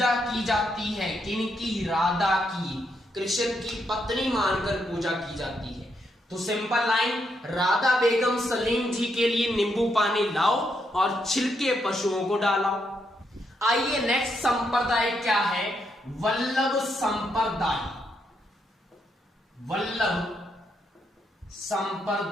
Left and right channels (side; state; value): both; normal; correlation 0.78